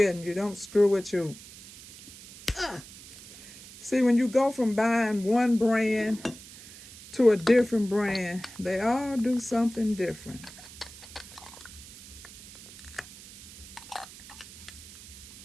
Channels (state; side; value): noise; right; hiss, 17 dB below the sound